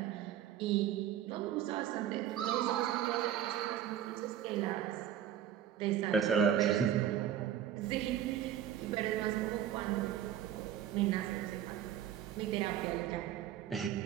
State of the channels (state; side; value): quieter; left; 10.5 dB